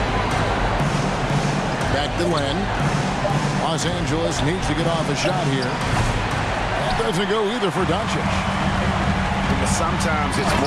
Back to Len. Los Angeles needs to get off a shot here. That doesn't go either for Doncic. But sometimes it's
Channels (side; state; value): both; identical; correlation 1.00